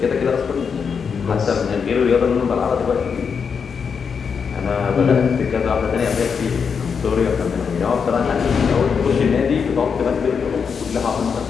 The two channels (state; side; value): quieter; right; 6.2 dB